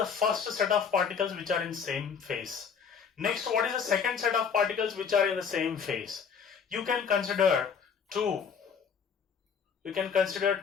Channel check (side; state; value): right; quieter; 6.6 dB